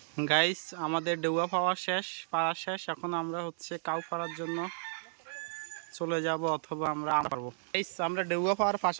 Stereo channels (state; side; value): silent; left; 56 dB below the other